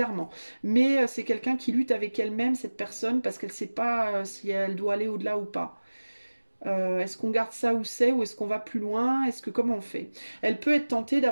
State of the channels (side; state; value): both; inverted; correlation -1.00